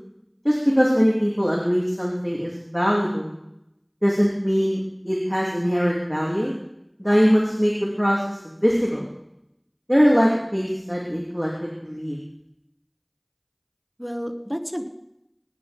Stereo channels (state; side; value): identical; both; correlation 1.00